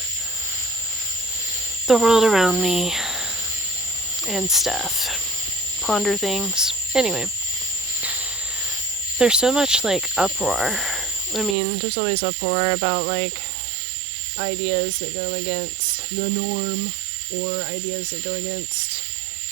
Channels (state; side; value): drops out; left; at 11.6 s